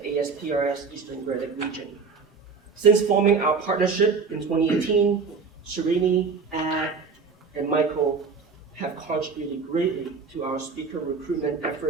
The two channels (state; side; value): quieter; left; 5.1 dB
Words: ASPRS Eastern Great Lakes region. Since forming our partnership in 2018, Srini, Ad, and Michael have contributed greatly to our speaker recruitment